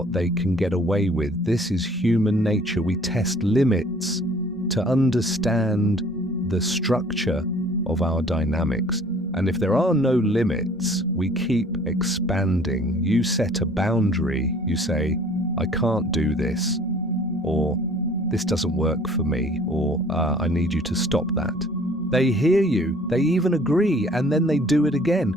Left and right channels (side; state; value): both; normal; correlation 0.53